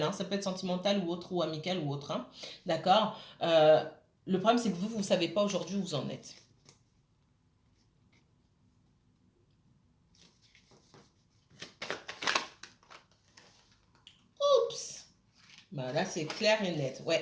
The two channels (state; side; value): identical; both; correlation 1.00